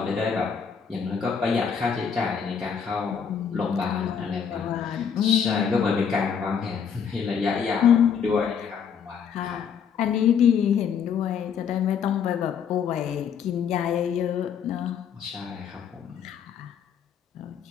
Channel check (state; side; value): quieter; right; 7.1 dB